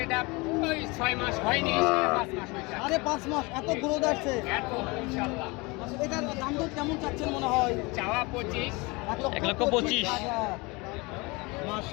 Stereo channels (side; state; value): right; quieter; 25.7 dB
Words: এটা ওই 6 মাস হয়নি, 5 মাস হয়েছে। 5.5 মাস। এত গ্রোথ আসছে। এত ইনশাআল্লাহ। এটার দাম দর কেমন চাচ্ছেন মনে হয়? চাওয়া 25। 1,25,000।